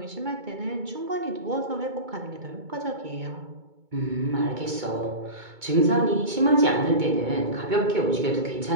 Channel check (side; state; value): left; late; 2.2 ms